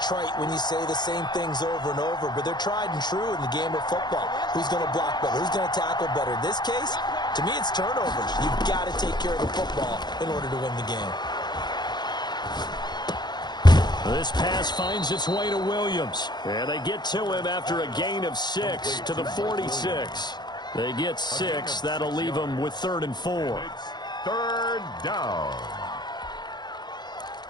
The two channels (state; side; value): late; right; 0.21 ms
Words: trite when you say the same things over and over, but they're tried and true in the game of football. Who's going to block better? Who's going to tackle better? In this case, to me, it's turnovers. You've got to take care of the football in order to win the game. This pass finds its way to Williams. And they get to him after a gain of 6 to the 46. They get 6. That'll leave them with 3rd and 4. It's 3rd down.